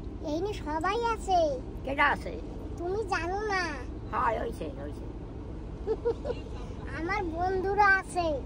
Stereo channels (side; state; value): both; identical; correlation 1.00